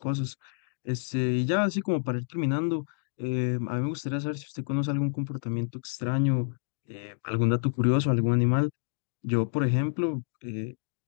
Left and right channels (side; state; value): right; silent; digital silence